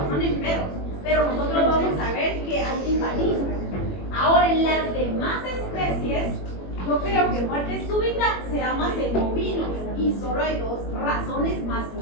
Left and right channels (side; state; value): right; late; 21 ms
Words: en perros. Pero nosotros vamos a ver que hay timpanismo. Ahora, en las demás especies, yo creo que muerte súbita se da más en bovinos y solo hay dos razones más